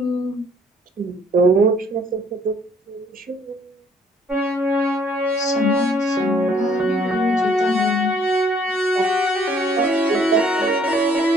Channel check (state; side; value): normal; both; correlation 0.63